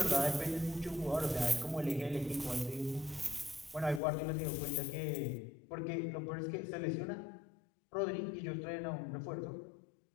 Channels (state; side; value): drops out; right; at 4.0 s